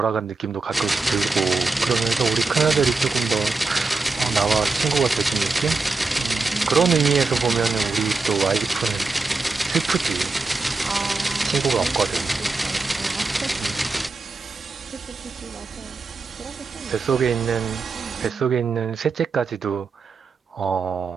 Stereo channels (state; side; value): quieter; left; 3.9 dB